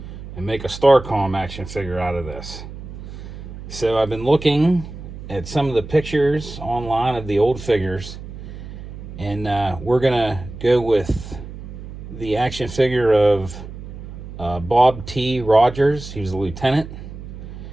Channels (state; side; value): noise; right; hum, 12 dB below the sound